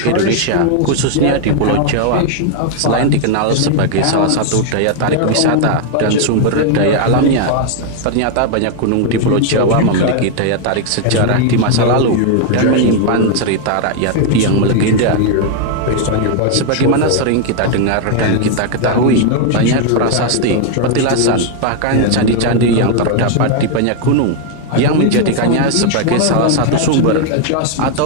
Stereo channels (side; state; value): both; different; correlation 0.00